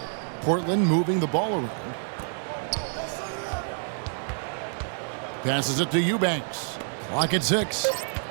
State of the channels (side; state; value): left; silent; digital silence